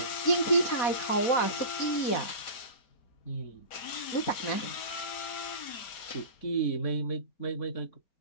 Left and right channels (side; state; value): right; late; 5.0 ms